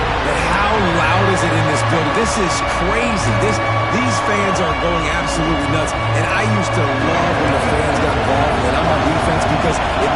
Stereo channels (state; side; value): identical; both; correlation 1.00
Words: But how loud is it in this building? This is crazy. These fans are going absolutely nuts. And I used to love when the fans got involved when I'm on defense because it